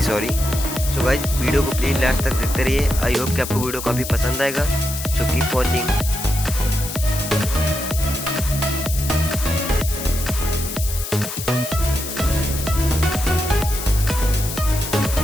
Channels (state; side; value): noise; left; hiss, 7 dB below the sound